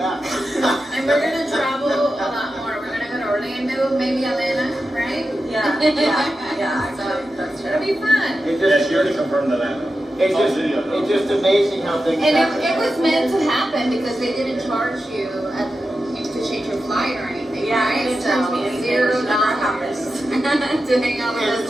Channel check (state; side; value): normal; both; correlation 0.91